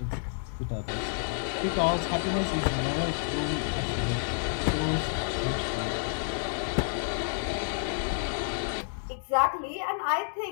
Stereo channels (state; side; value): silent; right; digital silence